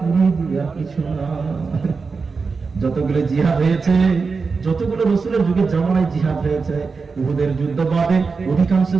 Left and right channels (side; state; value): left; quieter; 4.7 dB